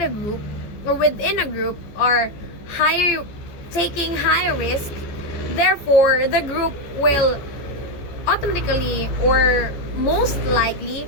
a group or within a group are taking higher risk, therefore the group will automatically or most likely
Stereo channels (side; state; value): right; late; 14 ms